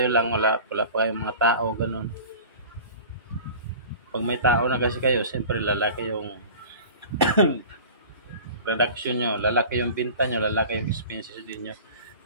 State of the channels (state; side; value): inverted; both; correlation -0.39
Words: lang, wala pa kayong mga tao, ganun. Pag may tao na kasi kayo, siyempre lalaki yung production nyo, lalaki yung binta nyo, lalaki yung expenses din nyo.